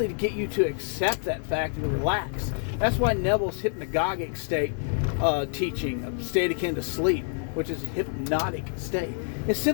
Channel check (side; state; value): right; silent; 60 dB below the other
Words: to get you to accept that fact and relax. That's why Neville's hypnagogic state teaching, state akin to sleep, which is a hypnotic state, it's